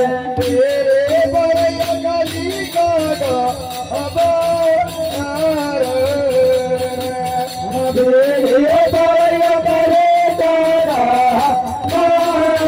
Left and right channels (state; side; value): identical; both; correlation 1.00